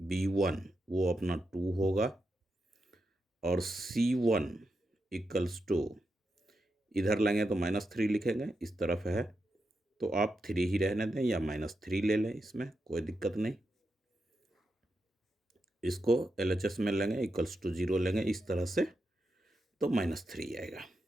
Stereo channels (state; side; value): normal; both; correlation 0.86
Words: b1 वो अपना 2 होगा। और c1 इक्वल्स टू इधर लेंगे तो -3 लिखेंगे, इस तरफ है तो आप 3 ही रहने दें या -3 ले लें, इसमें कोई दिक्कत नहीं। इसको LHS में लेंगे इक्वल्स टू 0 लेंगे इस तरह से तो -3 आएगा।